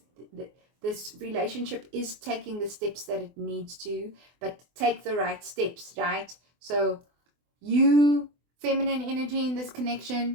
relationship is taking the steps that it needs to, but take the right steps, right? So you, feminine energy in this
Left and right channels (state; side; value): late; left; 24 ms